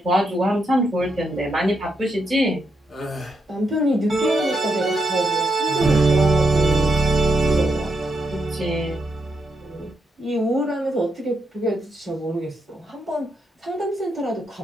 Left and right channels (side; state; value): both; normal; correlation 0.81